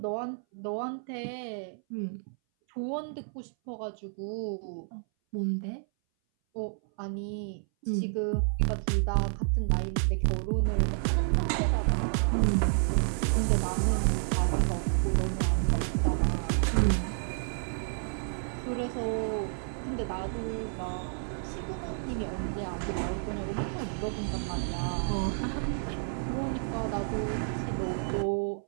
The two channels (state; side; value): silent; left; 58 dB below the other